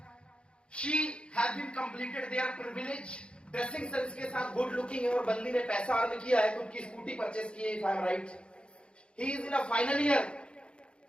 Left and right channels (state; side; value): late; right; 0.056 ms